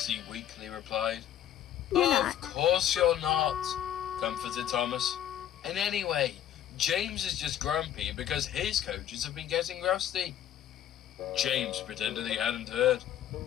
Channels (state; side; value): quieter; right; 10.8 dB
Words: weakly replied. Of course you're not, comforted Thomas. And anyway, James is just grumpy because his coaches have been getting rusty. James pretended he hadn't heard.